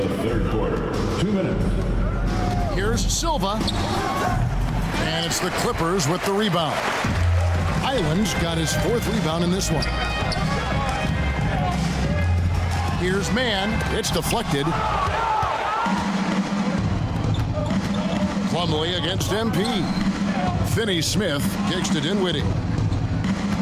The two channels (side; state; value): both; identical; correlation 1.00